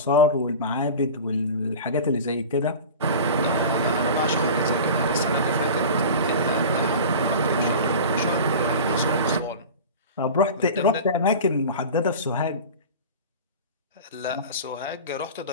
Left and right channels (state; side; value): inverted; both; correlation -0.33